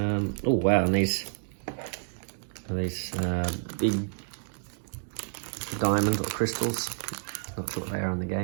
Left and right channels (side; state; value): left; silent; digital silence